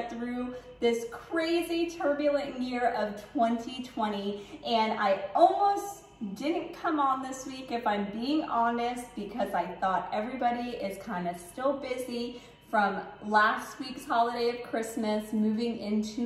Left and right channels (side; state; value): both; identical; correlation 1.00